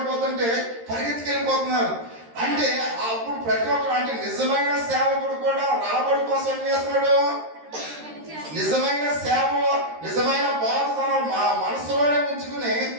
పరిగెత్తుకెళ్ళిపోతున్నారు. అంటే అప్పుడు ప్రతి ఒక్కరు అంటే నిజమైన సేవకుడు కూడా రాబడి కోసం ఏం చేస్తున్నాడు, నిజమైన సేవ, నిజమైన బాధ తన మనసులోనే ఉంచుకుని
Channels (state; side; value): late; left; 13 ms